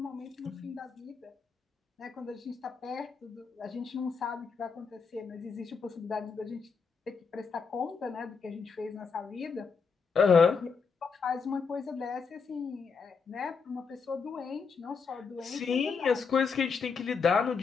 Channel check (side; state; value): right; quieter; 5.4 dB